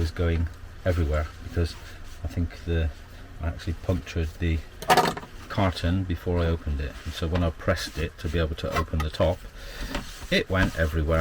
going everywhere because I think I actually punctured the carton before I opened it, and so when I pressed it to be able to open the top, it went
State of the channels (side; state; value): both; identical; correlation 1.00